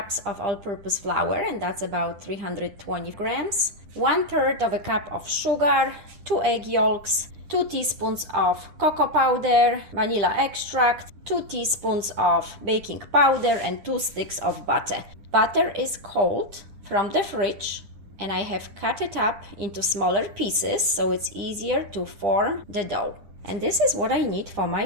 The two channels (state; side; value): late; left; 10 ms